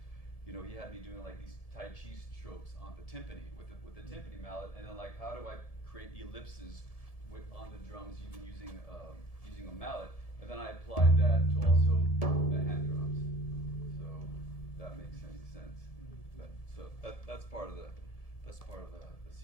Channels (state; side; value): late; right; 1.7 ms